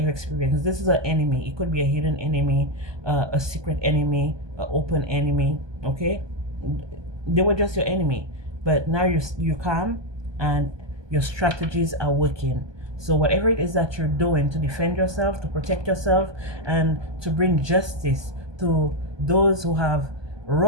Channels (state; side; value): late; left; 1.2 ms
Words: experienced. This is an enemy. It could be a hidden enemy, a secret enemy, an open enemy. Okay, they were just your enemy, but now you're calm, and your strategies are working. So whatever it is that you're doing to defend yourself, to protect yourself, and to bring justice to those who have